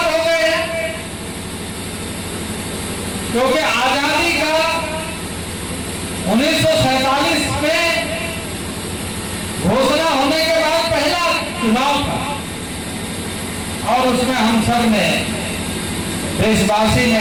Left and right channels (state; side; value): identical; both; correlation 1.00